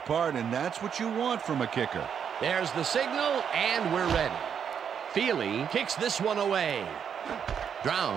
and that's what you want from a kicker. There's the signal, and we're ready. Feely kicks this one away.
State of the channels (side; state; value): left; quieter; 7.7 dB